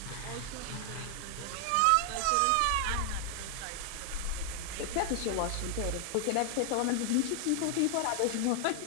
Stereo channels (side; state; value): both; different; correlation 0.00